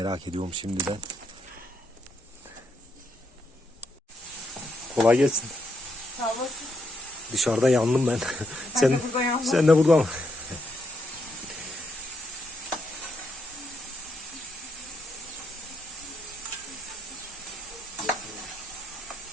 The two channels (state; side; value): normal; both; correlation 0.78